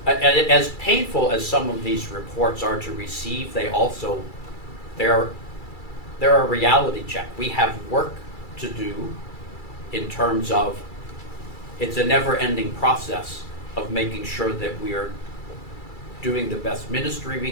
as painful as some of these reports are to receive, they're a reality check. We have work to do in terms of, it's a never-ending process of making sure that we are doing the best ministry we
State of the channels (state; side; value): late; right; 2.3 ms